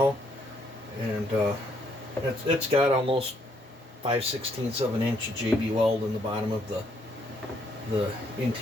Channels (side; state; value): both; normal; correlation 0.70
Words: And it's got almost 5/16 of an inch of JB weld in the bottom of the